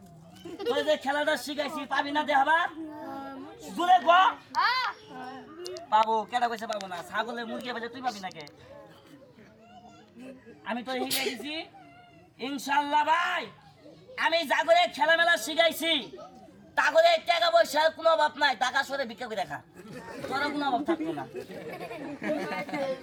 তুই যে খেলাটা শিখাইছি পাবি না দেখাবা জুড়ে গো পাবো কেটা কইছে পাবো না ছাগলের মুরগি বেজে তুই পাবি না কে আমি তো শিখাই দিছি ইনশাআল্লাহ ভাই আমি জাগরে খেলা মেলা শিখাইছি তাগরে টাকা পয়সার কোনো অভাব নাই টাকা সরে ভিক্ষা করে দেখা তোর কোনো অভাব থাকতো না।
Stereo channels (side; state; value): both; identical; correlation 1.00